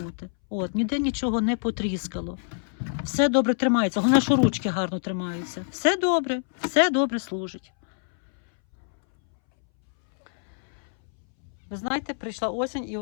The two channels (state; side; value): silent; right; 61 dB below the other